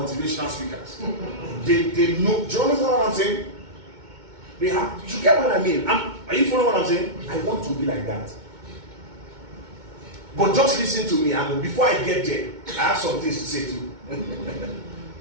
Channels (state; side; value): late; left; 2.2 ms